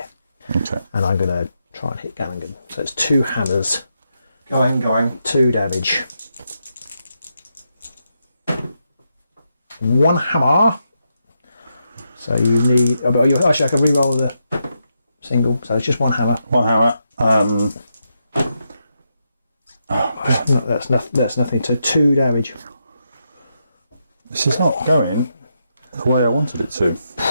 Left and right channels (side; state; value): both; inverted; correlation -0.83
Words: Okay. and I'm gonna try and hit Gallingan. So it's 2 hammers, Going. 2 damage, 1 hammer. So you need. Actually, I can re-roll the single. So it's just 1 hammer. One hammer. No, that's nothing. So 2 damage. This is not going the way I wanted it to.